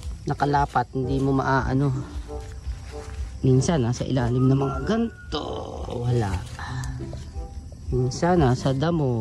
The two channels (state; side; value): identical; both; correlation 1.00